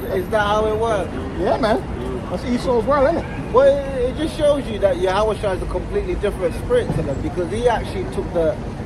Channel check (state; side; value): identical; both; correlation 1.00